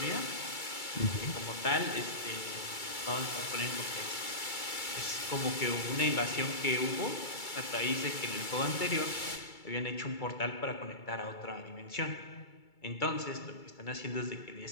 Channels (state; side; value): late; right; 2.3 ms